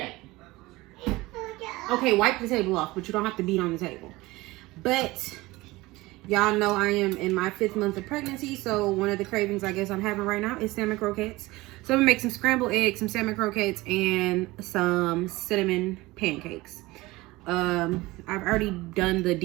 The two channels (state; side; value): quieter; left; 20.3 dB